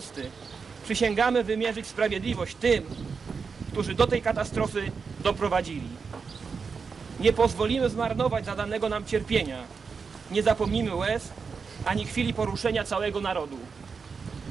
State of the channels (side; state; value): left; quieter; 5.3 dB